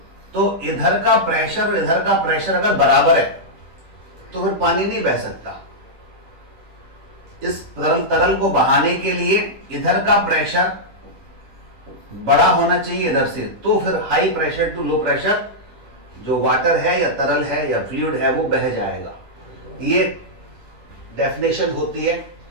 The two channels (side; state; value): left; late; 10 ms